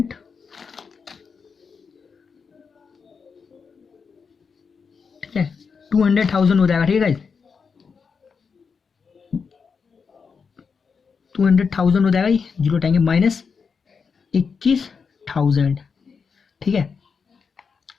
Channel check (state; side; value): quieter; right; 5.6 dB